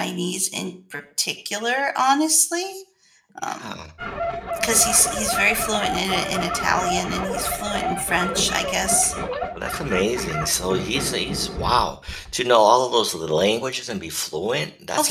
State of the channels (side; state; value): both; identical; correlation 1.00